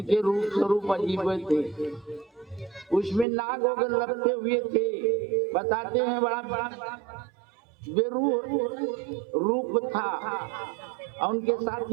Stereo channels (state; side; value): drops out; left; at 3.2 s